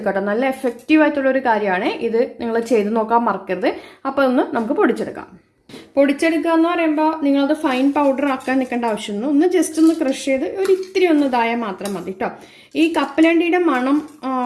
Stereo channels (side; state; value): both; identical; correlation 1.00